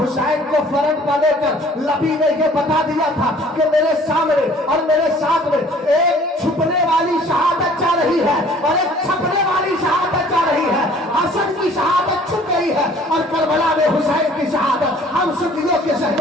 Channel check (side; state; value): both; normal; correlation 0.53